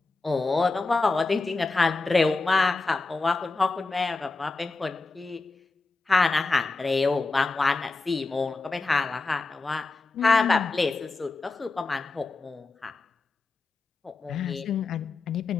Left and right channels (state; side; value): quieter; right; 3.6 dB